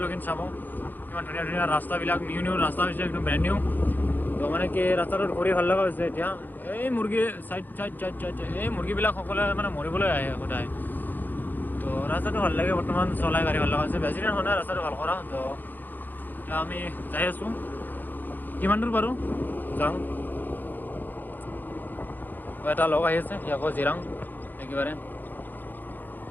চাব, কিমান ধুনীয়া ধুনীয়া ৰাস্তাবিলাক, নিউ ৰাস্তা হৈছে, একদম ব্ৰেণ্ড নিউ। তো মানে কি ৰাস্তাটোত ঘূৰি ভাল লগা হৈছে। এতিয়া এই মুৰ্গী চাইড এই মুৰ্গীবিলাক সকলোৱে মানে মৰিবলৈ আহে সদায়। তো ৰাস্তাটো ভাল লাগে, বৰ্তমান চলাই গাড়ী ভাল লগা হৈছে, বেছি দিন হোৱা নাই ৰাস্তাটো ভাল কৰা। তো এতিয়া আমি যাই আছোঁ, কিমান দূৰ পাৰোঁ যাওঁ। এটা লগ আহি আছে, সি আকৌ জিৰাং একেবাৰে।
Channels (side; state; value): right; late; 0.087 ms